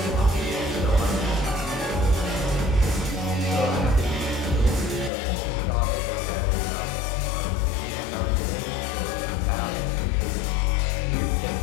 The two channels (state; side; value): drops out; right; at 5.1 s